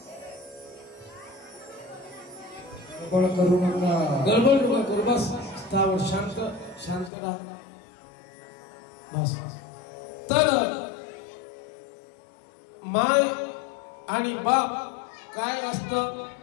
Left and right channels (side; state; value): right; drops out; at 7.1 s